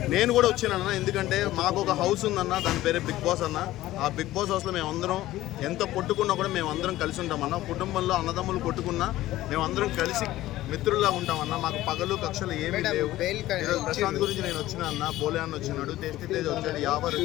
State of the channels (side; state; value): right; quieter; 15.6 dB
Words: నేను కూడా వచ్చానన్న, ఎందుకంటే మాకు ఒక హౌస్ ఉందన్న, దాని పేరే బిగ్ బాస్ అన్న. ఆ బిగ్ బాస్ హౌస్లో మేమందరం ఎంత కొట్టుకున్నా కూడా మేమందరం కలిసి ఉంటామన్న. కుటుంబంలో అన్నదమ్ములు కొట్టుకున్నా మేమందరం కలిసి మిత్రుల్లా ఉంటామన్న. మాకు పగలు కక్షలు ఏమీ లేవు. ప్రశాంత్ గురించి నేను వచ్చిన అన్న, బోలే అన్న వచ్చినాడు, టేస్టీ తేజ్ వచ్చాడు, యావర్